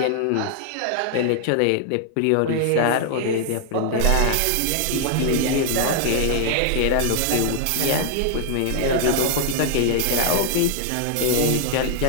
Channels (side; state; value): both; different; correlation 0.00